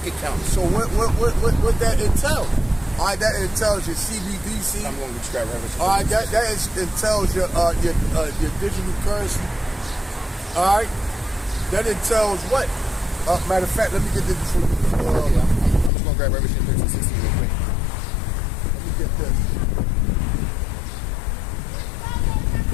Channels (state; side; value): drops out; right; at 15.9 s